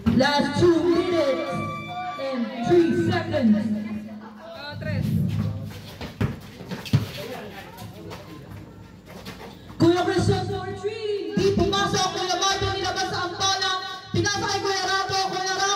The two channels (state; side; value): identical; both; correlation 1.00